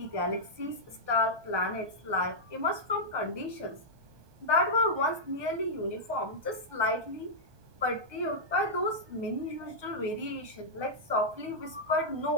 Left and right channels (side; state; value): left; late; 1.2 ms